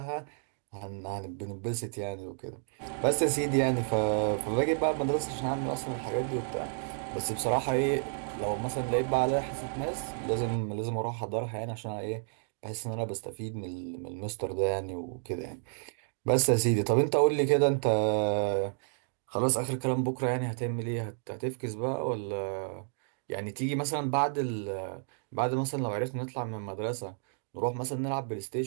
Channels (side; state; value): left; silent; digital silence